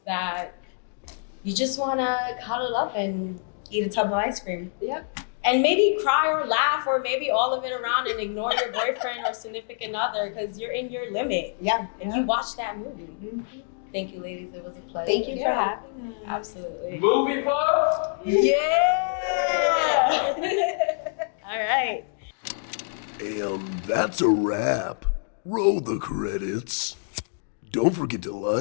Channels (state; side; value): silent; right; 61 dB below the other